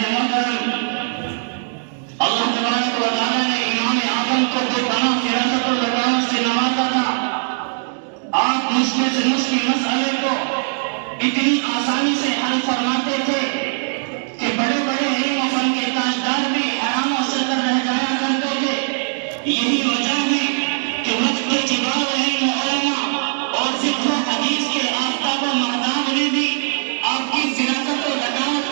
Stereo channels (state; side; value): silent; left; digital silence